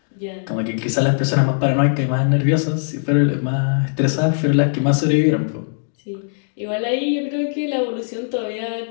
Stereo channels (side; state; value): right; silent; digital silence